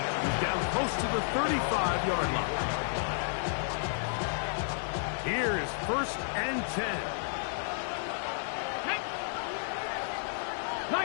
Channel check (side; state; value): right; silent; digital silence